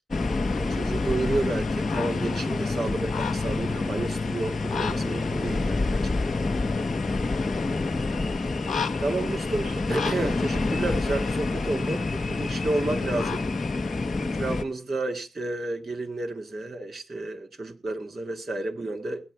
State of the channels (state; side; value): normal; both; correlation 0.90